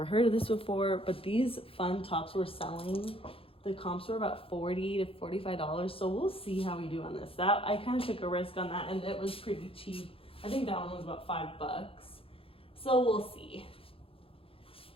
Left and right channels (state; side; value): late; right; 0.27 ms